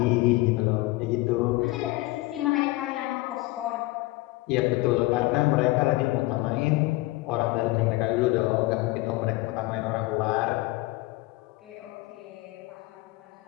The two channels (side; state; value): right; quieter; 20.4 dB